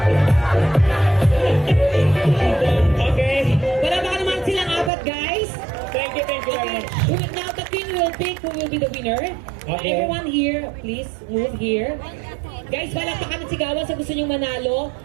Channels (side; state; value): left; drops out; at 4.9 s